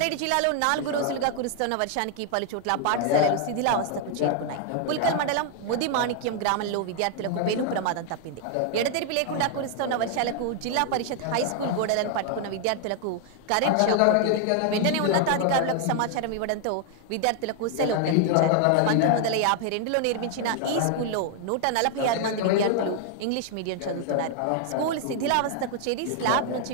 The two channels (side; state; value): both; different; correlation 0.00